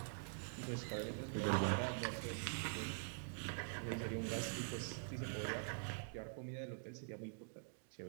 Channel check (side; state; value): left; silent; digital silence